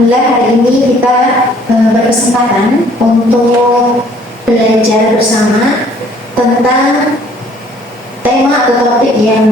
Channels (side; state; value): both; normal; correlation 0.58